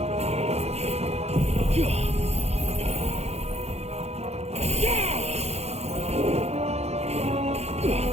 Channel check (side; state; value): left; late; 0.31 ms